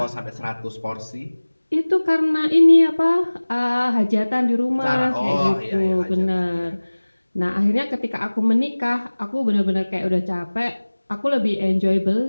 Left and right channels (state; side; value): inverted; both; correlation -1.00